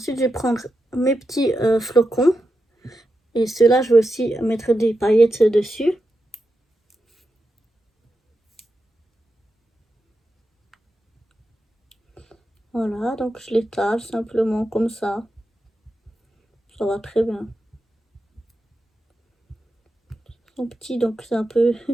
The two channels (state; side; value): normal; both; correlation 0.88